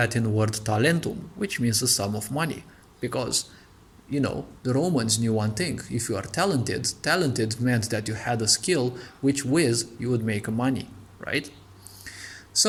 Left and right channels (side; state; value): both; identical; correlation 1.00